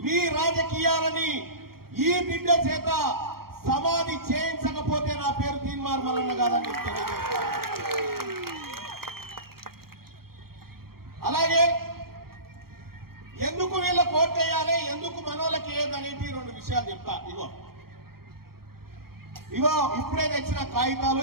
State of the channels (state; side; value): late; left; 0.94 ms